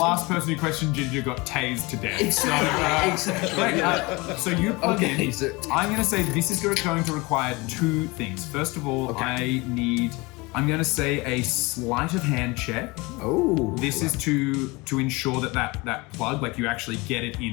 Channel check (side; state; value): right; quieter; 24.6 dB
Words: person who questioned Ginger got tased to death. Exactly. So you plug Okay, in. so- I'm going to say this is going to require two things. First of all, I'm going to say a sleight of hand check. Oh. This is to ensure that plug, like you actually get it